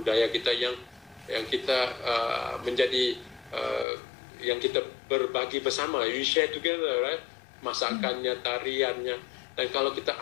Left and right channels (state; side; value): drops out; right; at 3.9 s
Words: kita yang kita menjadi yang kita berbagi bersama. You share together, right? Masakannya, tariannya. Dan kalau kita